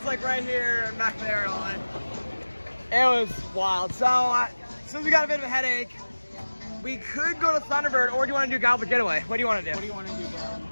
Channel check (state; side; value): inverted; both; correlation -1.00